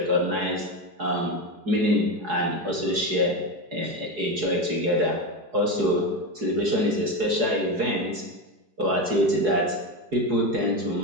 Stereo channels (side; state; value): left; late; 4.7 ms